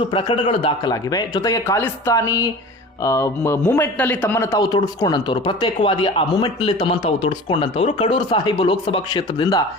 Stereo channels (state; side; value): normal; both; correlation 0.37